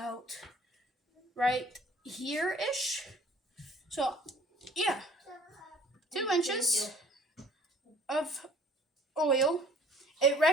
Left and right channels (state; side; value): normal; both; correlation 0.54